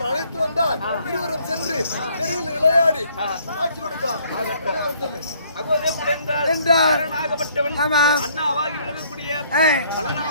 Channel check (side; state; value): both; inverted; correlation -0.63